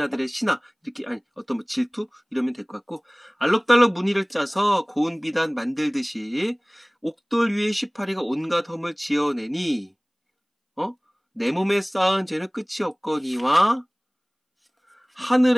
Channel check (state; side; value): identical; both; correlation 1.00